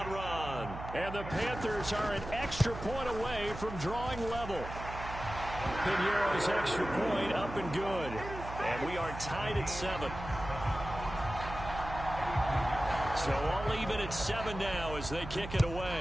run. And the Panthers are an extra point away from drawing level. Piñeiro's extra point up and good. And we are tied at 7. So all even at 7 now as they kick it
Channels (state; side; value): noise; right; hum, 10 dB below the sound